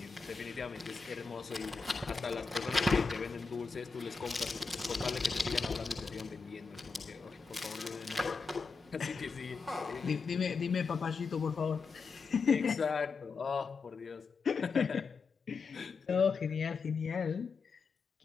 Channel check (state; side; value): quieter; right; 4.9 dB